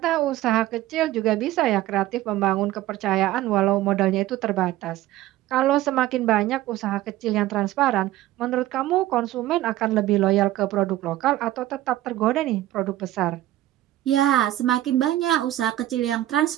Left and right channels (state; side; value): quieter; left; 14.9 dB